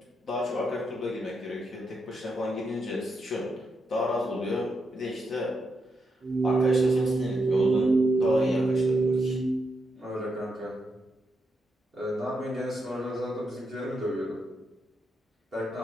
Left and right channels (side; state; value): both; normal; correlation 0.83